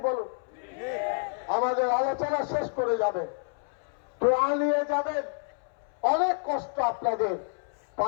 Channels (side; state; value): right; silent; 59 dB below the other